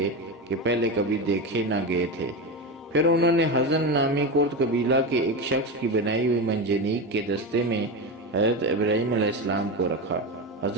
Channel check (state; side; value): normal; both; correlation 0.19